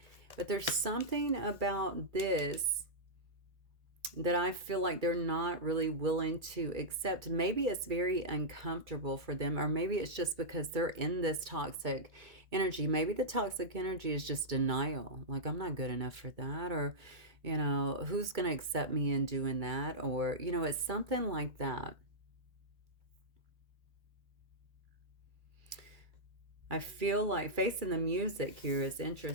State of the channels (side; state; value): left; late; 2.3 ms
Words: But there's something about this that I feel like they're not really willing to accept. Maybe it's very uncomfortable for them, or maybe it's just because they're in this toxic energy. Maybe the toxic energy is just denial. Like, I'm not good enough for that, or, you know, who's going to accept me in doing that? Or, you know, it's something like that. I feel like facing the music here is